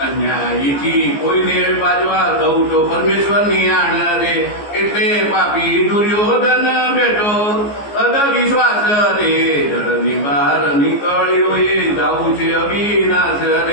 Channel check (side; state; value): right; late; 14 ms